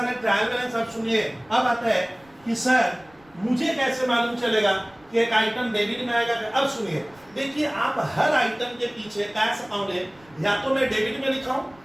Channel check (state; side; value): noise; right; rumble, 29 dB below the sound